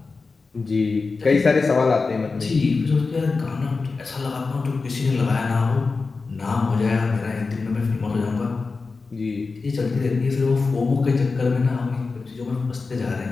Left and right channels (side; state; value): right; quieter; 4.2 dB